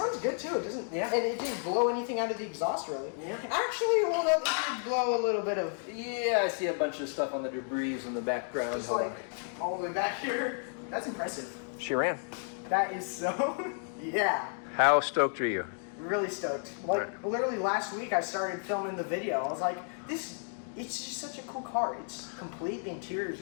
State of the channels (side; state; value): right; silent; 56 dB below the other